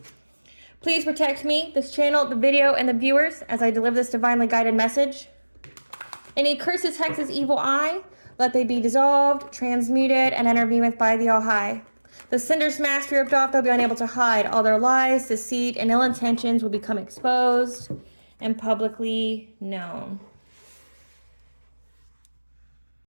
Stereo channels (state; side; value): inverted; both; correlation -1.00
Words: Please protect me, this channel, the video, and the viewers as I deliver this divinely guided message. Any curses, hexes, evil eye, let they be dissolved, transmuted, and intervened with by the All High. The cinder's mask ripped off, they'll be unable to hide. All their lies, deceit, and ill intentions will become exposed and publicly known.